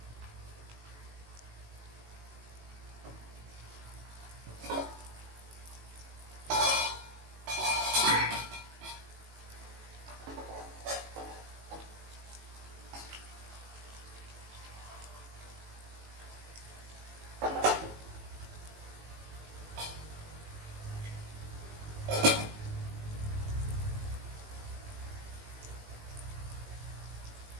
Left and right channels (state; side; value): late; left; 18 ms